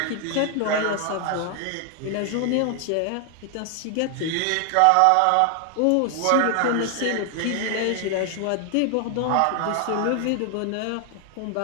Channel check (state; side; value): different; both; correlation 0.00